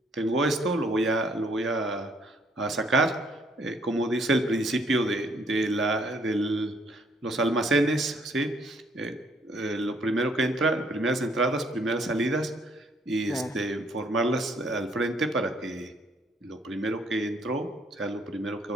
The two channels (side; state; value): both; normal; correlation 0.66